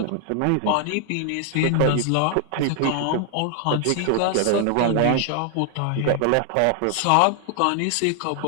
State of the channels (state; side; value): different; both; correlation 0.00